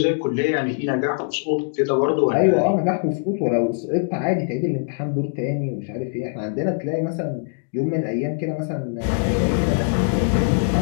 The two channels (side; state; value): right; silent; digital silence